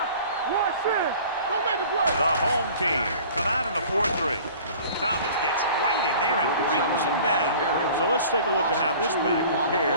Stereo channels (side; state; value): both; inverted; correlation -0.45